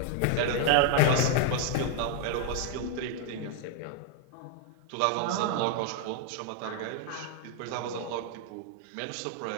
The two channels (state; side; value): different; both; correlation 0.00